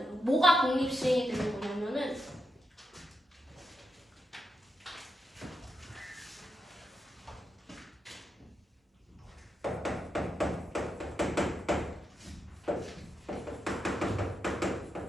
뭐가 독립시행이 되는 거냐면은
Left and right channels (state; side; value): normal; both; correlation 0.85